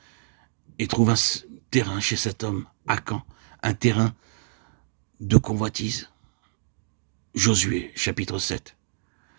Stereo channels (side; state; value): left; silent; digital silence